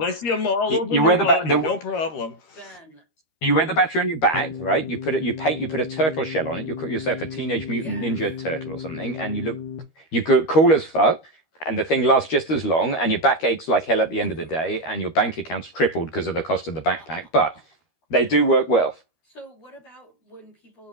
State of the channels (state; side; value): late; right; 13 ms